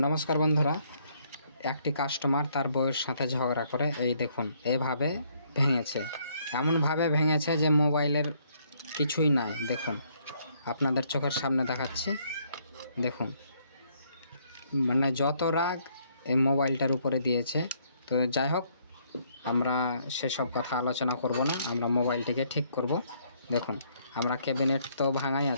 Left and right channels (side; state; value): both; inverted; correlation -0.68